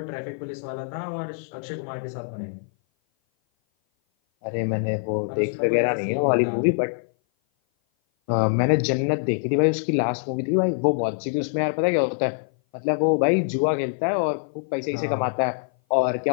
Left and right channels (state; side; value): silent; right; 57 dB below the other